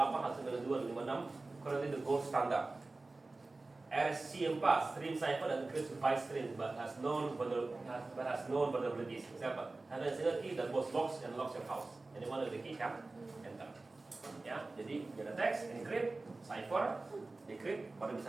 192, 156, currently the gold standard. RSC4, stream cipher and encrypts byte stream but has known vulnerabilities. Example, have a single key that both locks and locks your house. Anyone with the key can enter. Ya, jadi ada teks, encrypt, cipher, decrypt, baru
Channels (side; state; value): left; quieter; 3.3 dB